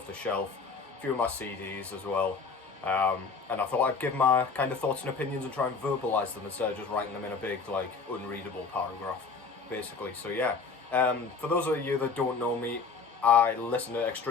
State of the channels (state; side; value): quieter; right; 4.9 dB